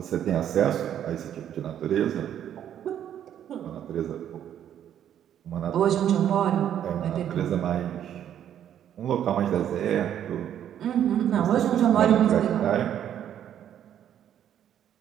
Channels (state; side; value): quieter; left; 10.1 dB